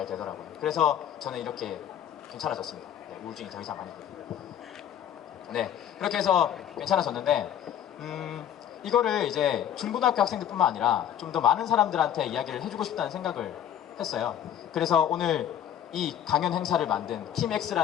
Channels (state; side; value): quieter; right; 10.1 dB